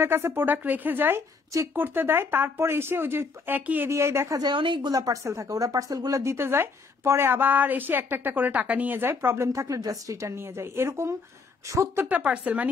কাছে প্রোডাক্ট রেখে যায়, চেক করতে দেয়, তারপর এসে ওই যে একই এরিয়ায় দেখা যায় অনেকগুলা পার্সেল থাকে, ওরা পার্সেলগুলো দিতে যায়, পরে আবার এসে একটা একটা করে টাকা নিয়ে যায়, প্রবলেম থাকলে জাস্ট রিটার্ন নিয়ে যায়। এরকম 70টা পার্সেল, মানে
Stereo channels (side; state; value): right; quieter; 4.6 dB